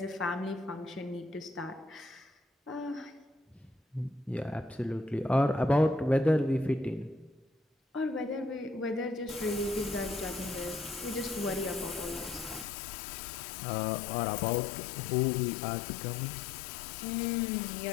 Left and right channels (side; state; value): right; drops out; at 12.7 s